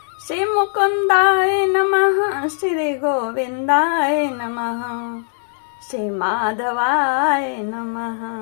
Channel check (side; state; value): right; silent; digital silence